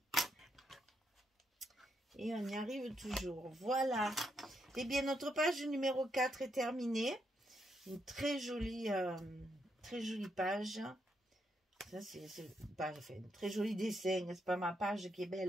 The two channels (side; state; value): both; normal; correlation 0.79